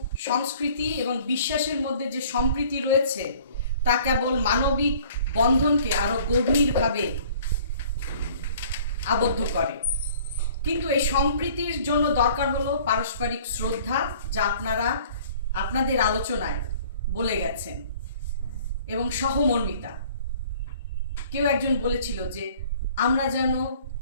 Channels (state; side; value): inverted; both; correlation -0.53